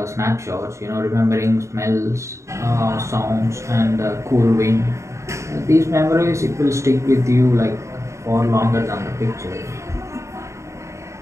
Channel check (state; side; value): late; left; 0.14 ms